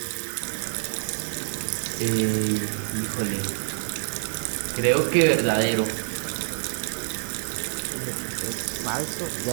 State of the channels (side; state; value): left; silent; digital silence